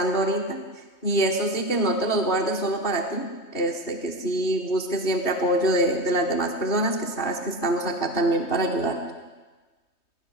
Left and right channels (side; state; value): right; late; 3.2 ms